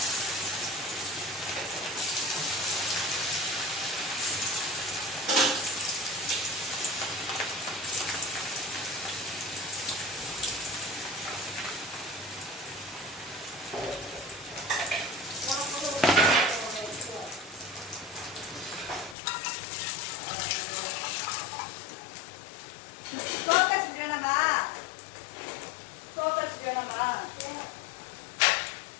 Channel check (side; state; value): right; drops out; at 19.2 s